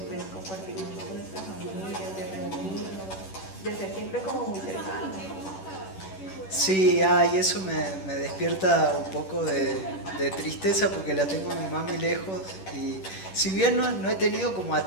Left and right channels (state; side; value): late; right; 10 ms